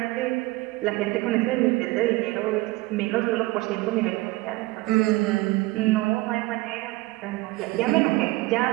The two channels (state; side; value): quieter; left; 20.9 dB